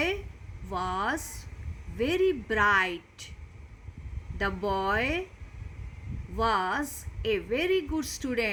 was very bright. The boy was a very good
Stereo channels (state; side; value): identical; both; correlation 1.00